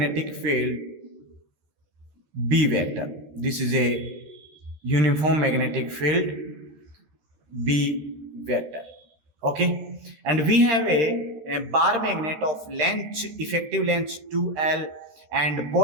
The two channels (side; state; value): left; late; 13 ms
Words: field B vector. This is a uniform magnetic field B vector. Okay. And we have a bar magnet of length, effective length 2L, and